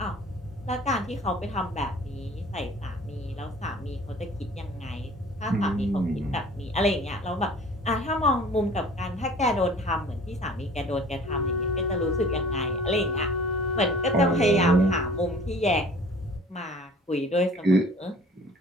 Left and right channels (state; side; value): normal; both; correlation 0.48